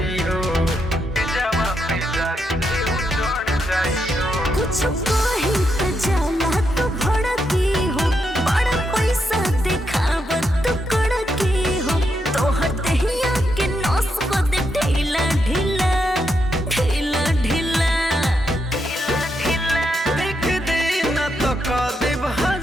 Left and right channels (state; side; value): normal; both; correlation 0.81